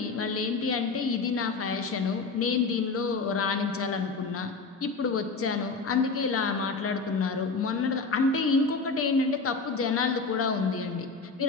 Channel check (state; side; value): quieter; right; 4.3 dB